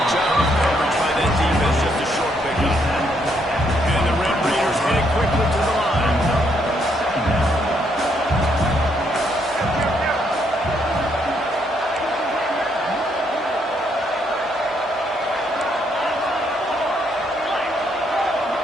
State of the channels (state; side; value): normal; both; correlation 0.73